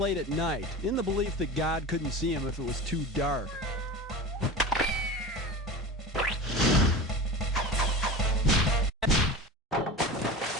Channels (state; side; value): normal; both; correlation 0.31